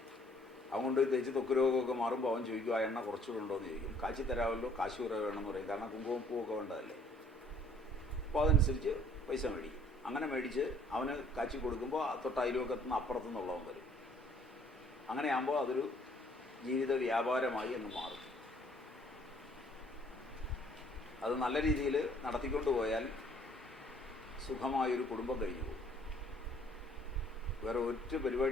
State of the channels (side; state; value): both; normal; correlation 0.60